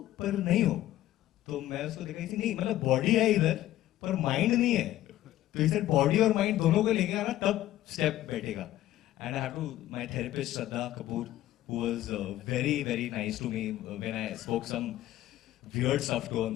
पर नहीं हो तो मैं उसको देखा थी नहीं मतलब बॉडी है इधर पर माइंड नहीं है तो इसे बॉडी और माइंड दोनों को लेके आना तब स्टेप बैठेगा and I have to my therapist Shraddha Kapoor who was very nice to me when I spoke some weird stuff to on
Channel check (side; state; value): right; quieter; 14.1 dB